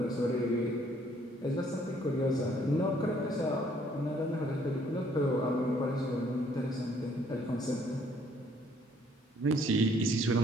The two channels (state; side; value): normal; both; correlation 0.63